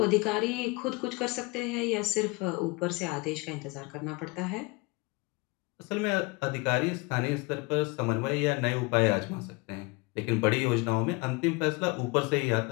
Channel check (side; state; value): right; quieter; 26.1 dB